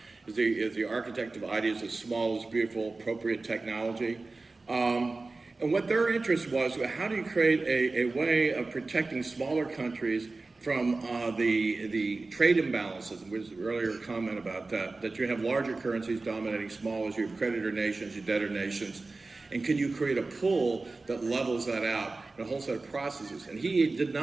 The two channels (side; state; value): left; quieter; 3.5 dB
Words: is the architect of ideas of small is beautiful, appropriate technology. And what their interest was, how do you create a way of protecting smaller countries from the trade imbalances? There was an earlier comment about that you have larger currencies dominating smaller, you have creditor nations, you debtor nations, and can you create a pool that levels that out in a whole set of processes? And he did